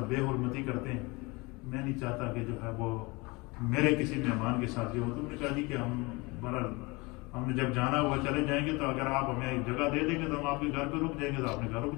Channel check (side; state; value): right; quieter; 25.5 dB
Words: بے حرمتی کرتے ہیں، میں نہیں چاہتا کہ جو ہے وہ میرے کسی مہمان کے ساتھ یہ ہو۔ تم نے کہا جی کہ ہم نے جب جانا ہوا چلے جائیں گے، تو اگر آپ ہمیں ایک جگہ دے دیں گے تو ہم آپ کے گھر پہ رک جائیں گے، تو آپ نے گھر رک